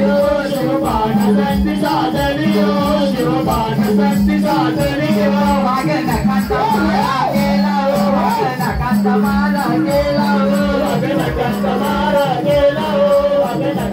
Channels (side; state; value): both; identical; correlation 1.00